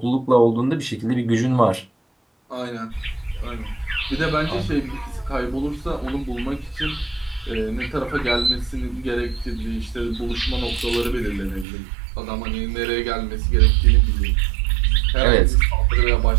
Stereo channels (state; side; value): drops out; left; at 11.7 s